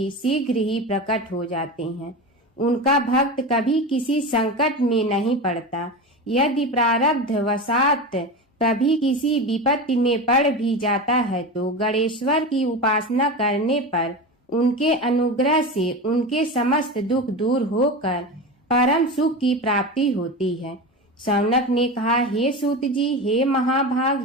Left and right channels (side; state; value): both; normal; correlation 0.25